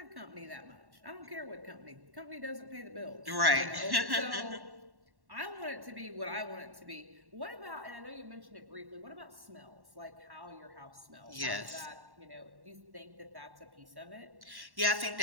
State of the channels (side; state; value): left; late; 1.1 ms